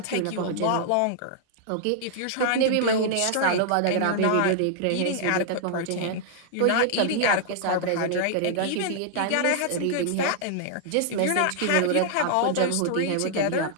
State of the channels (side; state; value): both; different; correlation -0.01